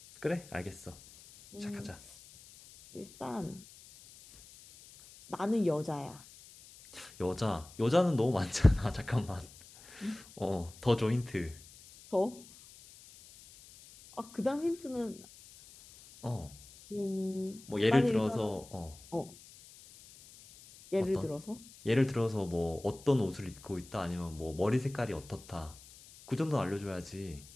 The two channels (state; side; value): noise; left; hiss, 21 dB below the sound